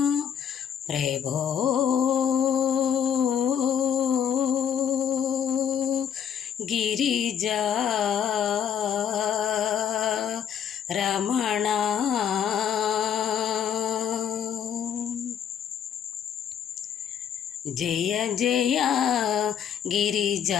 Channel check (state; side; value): quieter; right; 8.7 dB